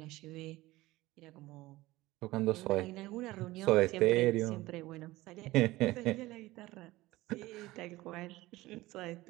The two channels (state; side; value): quieter; left; 18.5 dB